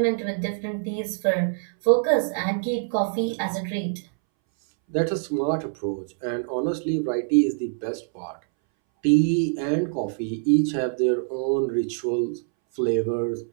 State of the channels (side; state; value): left; silent; 62 dB below the other